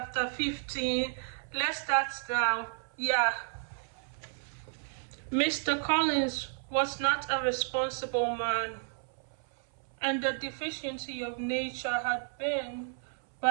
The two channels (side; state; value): left; silent; 56 dB below the other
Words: 15. Let's start now. Yeah. Mr. Collins was not a responsible man, and the deficiency of nature had been